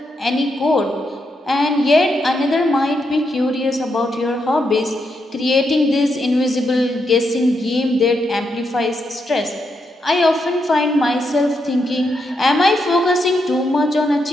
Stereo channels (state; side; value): normal; both; correlation 0.82